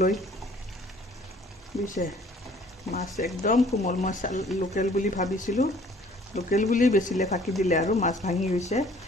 বুজিছে? মাছ একদম কোমল। মই লোকেল বুলি ভাবিছিলোঁ, লোকেল বুলি বেচিলে ফাঁকি দিলে আৰু মাছ ভাঙি গৈছে।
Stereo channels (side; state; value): both; normal; correlation 0.55